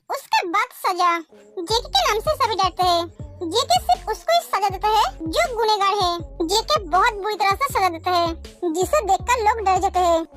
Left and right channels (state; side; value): identical; both; correlation 1.00